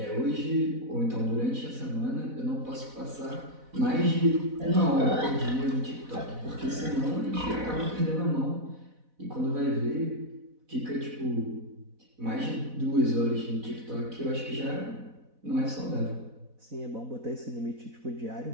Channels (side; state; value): left; late; 4.0 ms